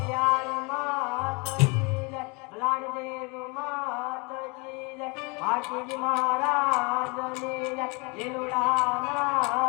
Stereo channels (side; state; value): right; quieter; 30.2 dB